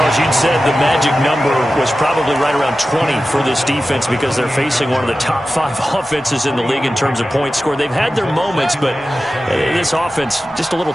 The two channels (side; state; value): both; normal; correlation 0.94